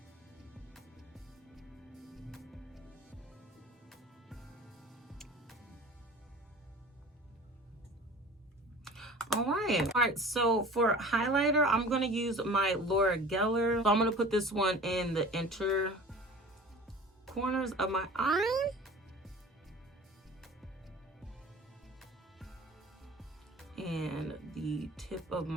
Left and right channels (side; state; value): both; normal; correlation 0.41